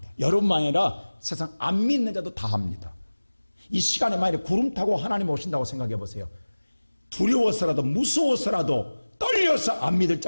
여러분만 아니라 세상 안 믿는 자도 다 합니다. 이 시간에 만약에 구름 타고 하나님 오신다고 생각해 보세요. 두려워서라도 무서워서라도 떨려서 안 믿을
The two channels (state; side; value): inverted; both; correlation -1.00